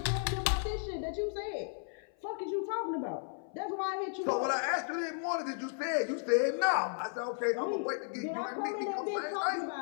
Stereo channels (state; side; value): silent; right; 55 dB below the other